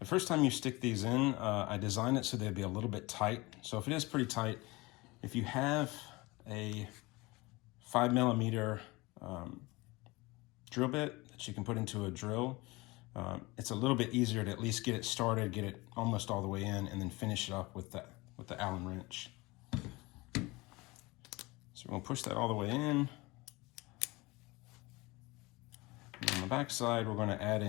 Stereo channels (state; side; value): quieter; right; 23.0 dB